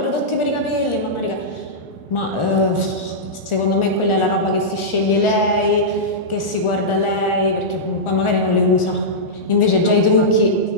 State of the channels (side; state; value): right; late; 1.4 ms